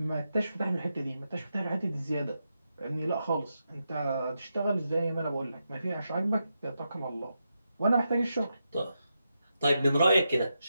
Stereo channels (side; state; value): both; inverted; correlation -0.86